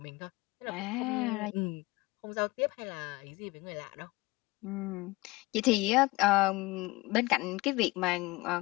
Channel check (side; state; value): right; quieter; 22.7 dB